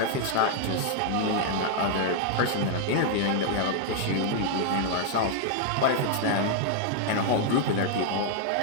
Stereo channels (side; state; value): both; different; correlation 0.00